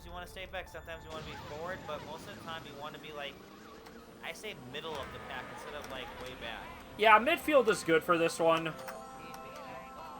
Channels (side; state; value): both; identical; correlation 1.00